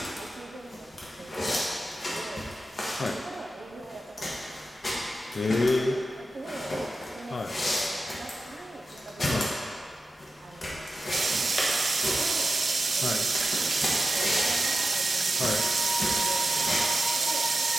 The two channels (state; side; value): normal; both; correlation 0.92